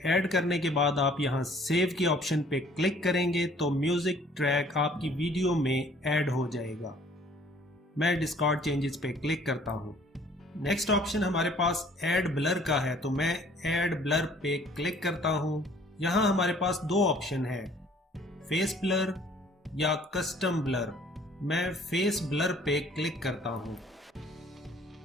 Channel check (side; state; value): both; normal; correlation 0.56